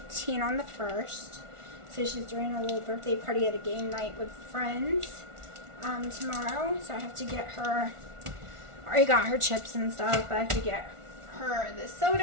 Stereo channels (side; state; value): left; late; 1.4 ms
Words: on the 1st. So she's doing a little birthday party at a game night with friends tomorrow. So I have to get her, I already got her chips and stuff, but I have to get her the